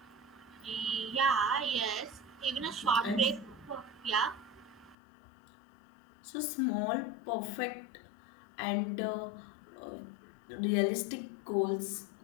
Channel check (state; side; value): drops out; right; at 5.0 s